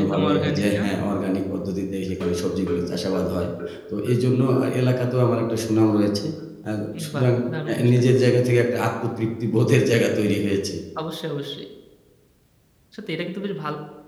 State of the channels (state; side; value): identical; both; correlation 1.00